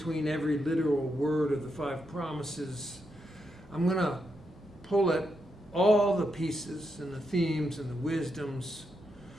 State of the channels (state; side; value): normal; both; correlation 0.83